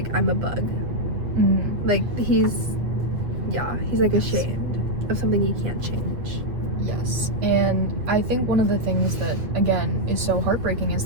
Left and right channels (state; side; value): late; left; 8.3 ms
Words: I'm a bug. Like, he's like ashamed of something he can't change. Yes, and I think one of the things that, again, is so heartbreaking is